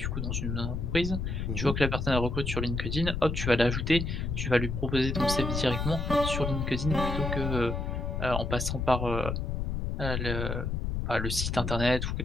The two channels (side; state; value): left; noise; rumble, 2 dB below the sound